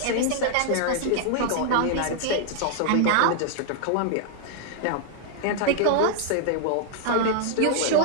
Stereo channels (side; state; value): both; different; correlation 0.00